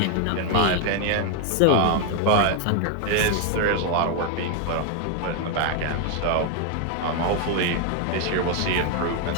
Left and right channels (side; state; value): both; different; correlation 0.01